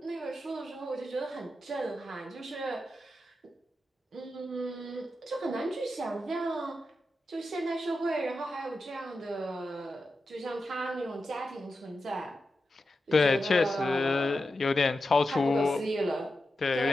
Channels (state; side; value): normal; both; correlation 0.90